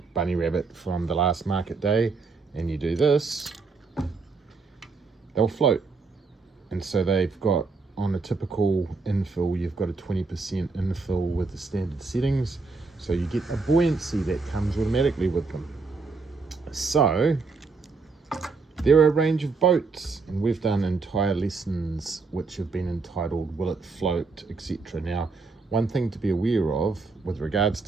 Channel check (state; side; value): quieter; left; 4.2 dB